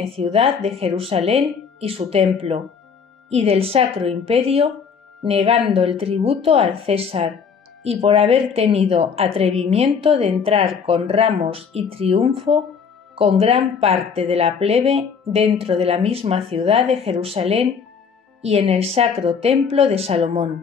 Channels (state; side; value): quieter; right; 6.2 dB